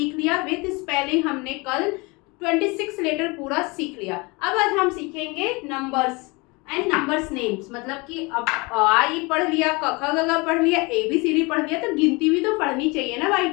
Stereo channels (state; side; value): quieter; right; 26.7 dB